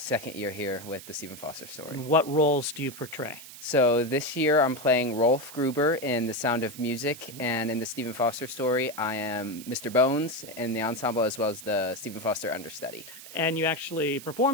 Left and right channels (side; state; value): right; noise; hiss, 15 dB below the sound